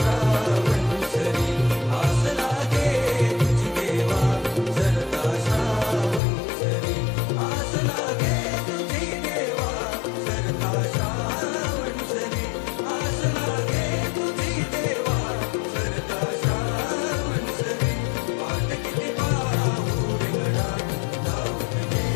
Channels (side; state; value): right; drops out; at 6.2 s